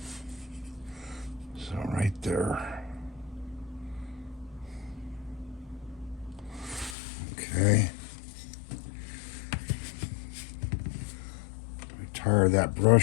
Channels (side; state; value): right; drops out; at 7.0 s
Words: So right there. Okay. Retire that